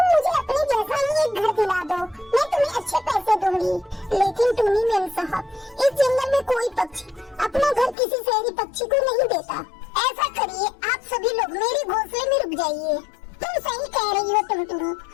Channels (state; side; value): drops out; right; at 8.0 s